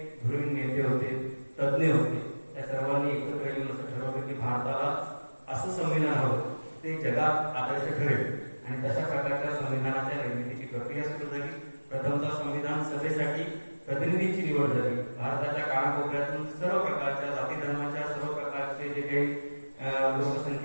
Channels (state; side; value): inverted; both; correlation -1.00